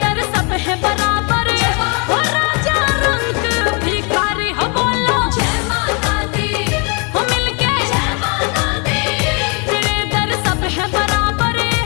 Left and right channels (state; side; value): quieter; right; 33.6 dB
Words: दर सब है बराबर, ओ राजा रंग भिखारी। हो बोलो जय माता दी, हो मिलके जय माता दी, तेरे दर सब है बराबर,